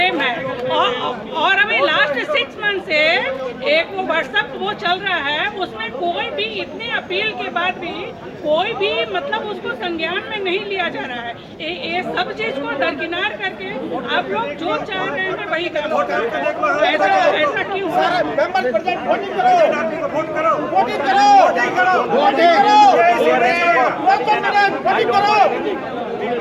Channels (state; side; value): identical; both; correlation 1.00